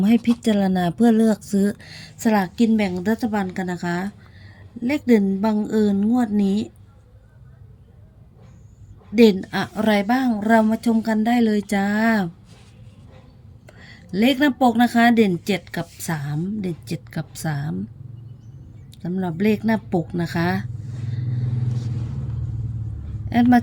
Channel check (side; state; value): both; identical; correlation 1.00